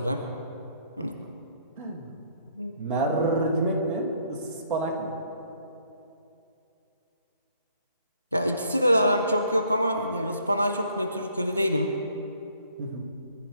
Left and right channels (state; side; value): inverted; both; correlation -0.64